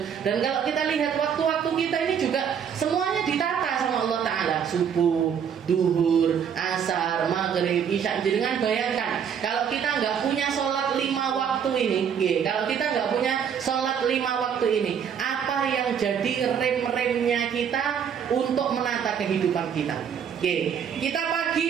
Dan kalau kita lihat waktu-waktu kita ini juga semuanya ditata sama Allah Ta'ala. Subuh, duhur, asar, maghrib, isya. Jangan bayangkan kalau kita nggak punya sholat 5 waktu ini. Kalau kita nggak punya sholat 5 waktu ini, apa yang jadi rem-remnya kita untuk menata kehidupan kita? Kita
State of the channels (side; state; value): left; quieter; 7.8 dB